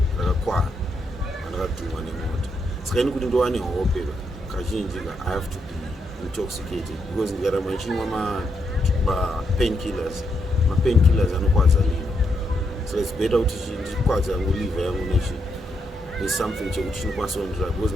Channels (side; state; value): both; normal; correlation 0.79